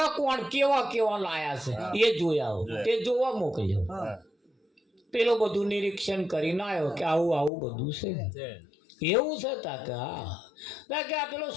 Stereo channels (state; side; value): drops out; right; at 7.5 s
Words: કોણ કેવા લાયા છે એ જોઈ આવો. તે જોવા મોકલ્યો. પેલો બધું નિરીક્ષણ કરીને આવ્યો કે આવું બધું છે. એવું છે તા કે હા કે આ પેલો